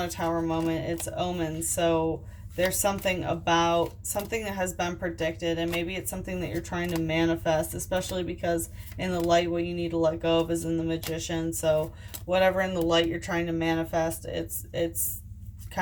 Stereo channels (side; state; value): both; identical; correlation 1.00